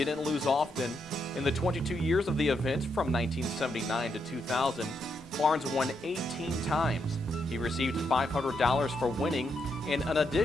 lose often. In the 22 years of the event, from 1979 to 2000, Barnes won 18 times. He received $500 for winning and an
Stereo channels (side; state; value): both; normal; correlation 0.80